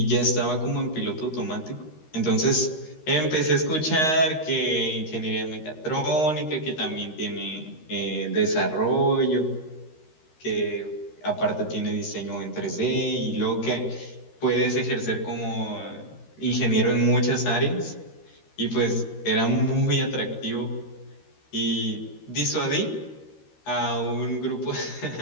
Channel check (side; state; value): right; late; 13 ms